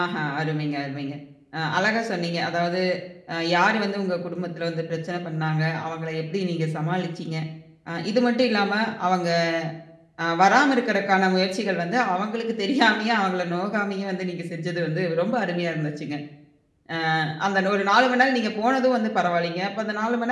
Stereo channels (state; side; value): identical; both; correlation 1.00